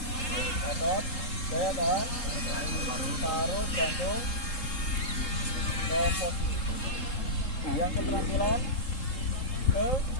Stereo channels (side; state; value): right; late; 3.7 ms